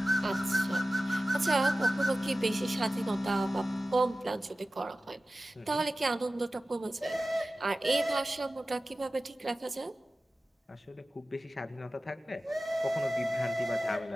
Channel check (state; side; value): normal; both; correlation 0.95